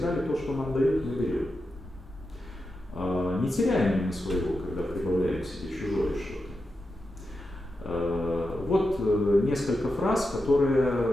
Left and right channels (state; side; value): normal; both; correlation 0.89